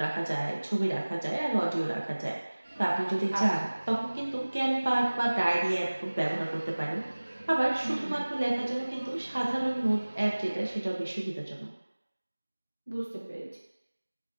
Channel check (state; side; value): inverted; both; correlation -1.00